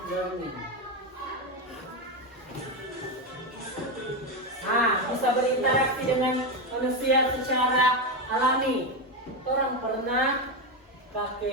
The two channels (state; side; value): normal; both; correlation 0.11